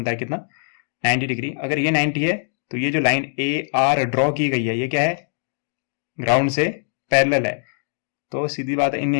है कितना, 90 डिग्री। अगर ये 90 है तो ये जो लाइन AR ड्रॉ की गई है ये क्या है, ग्राउंड से पैरेलल है। तो सीधी बात है, इन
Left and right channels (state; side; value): silent; right; digital silence